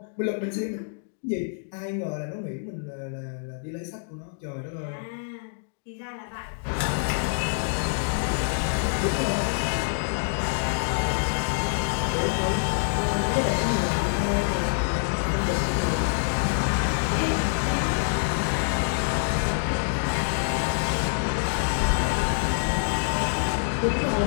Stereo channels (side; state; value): right; silent; digital silence